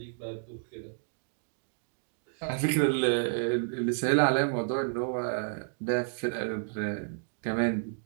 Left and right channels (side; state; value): left; silent; digital silence